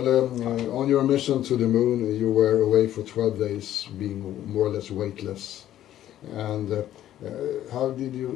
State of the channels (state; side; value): quieter; right; 12.3 dB